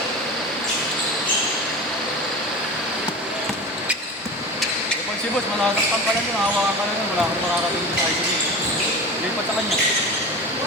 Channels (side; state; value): both; normal; correlation 0.31